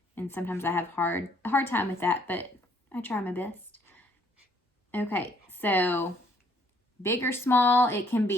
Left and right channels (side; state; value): both; normal; correlation 0.64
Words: And sometimes I have a hard time with that, but I try my best. Okay, so big or small, it can